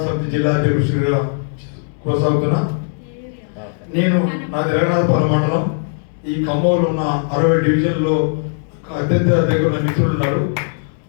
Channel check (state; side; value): silent; right; digital silence